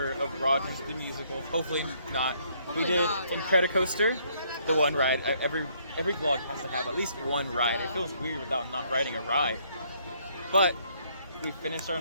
of Rogers the Musical. Hopefully not. We did Incredicoaster, the one ride. Every vlog has to have at least one ride. It feels weird without not riding a ride. But we finished our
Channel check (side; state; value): both; inverted; correlation -0.68